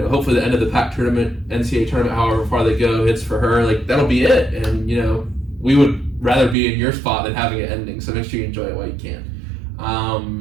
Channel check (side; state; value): left; drops out; at 6.6 s